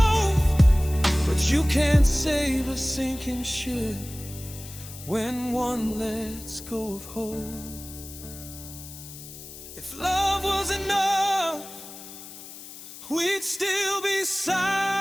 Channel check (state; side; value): noise; left; hiss, 14 dB below the sound